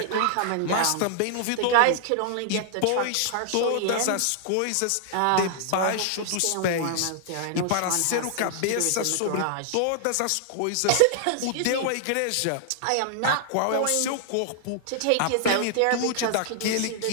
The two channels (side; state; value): both; different; correlation -0.01